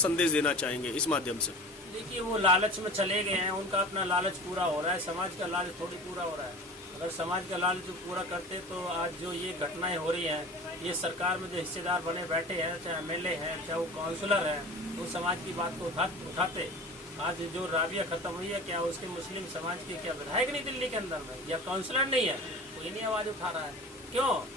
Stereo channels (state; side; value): normal; both; correlation 0.37